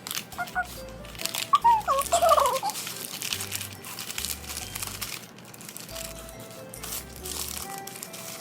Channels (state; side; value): identical; both; correlation 1.00